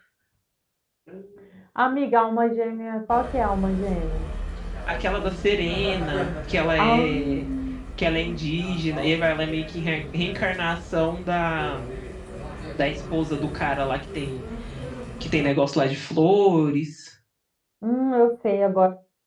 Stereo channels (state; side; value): identical; both; correlation 1.00